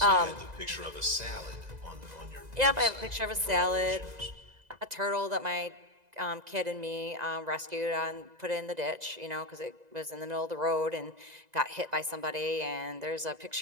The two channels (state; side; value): late; left; 2.0 ms